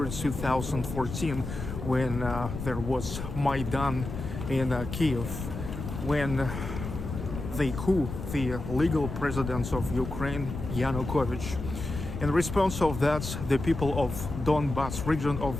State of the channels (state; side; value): noise; left; rumble, 7 dB below the sound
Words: 2014, when there was Maidan in Kiev, when the coup, the legal president of Ukraine, Yanukovych. In response of that, the people of Donbas region